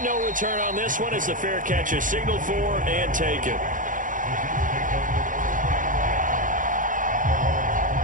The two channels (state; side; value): late; left; 0.38 ms